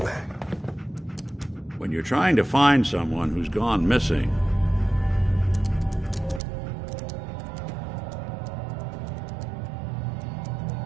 When you're trying to find someone who's gone missing,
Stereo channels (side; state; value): left; drops out; at 6.4 s